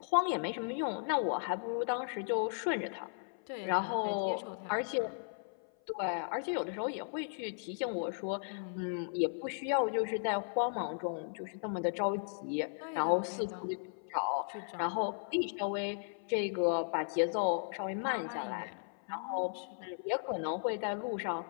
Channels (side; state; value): right; silent; 54 dB below the other